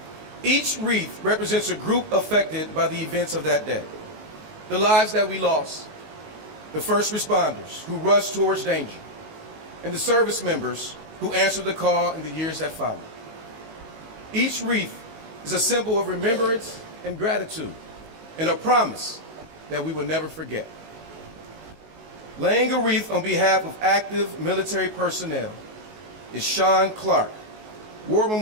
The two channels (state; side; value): late; left; 19 ms